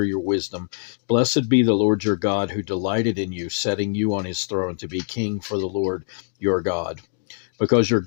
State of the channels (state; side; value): silent; right; digital silence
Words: your wisdom. Blessed be the Lord your God, who delighted in you, setting you on his throne to be king for the Lord your God. Because your